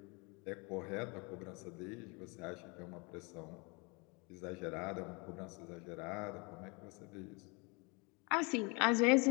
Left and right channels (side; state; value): right; quieter; 29.7 dB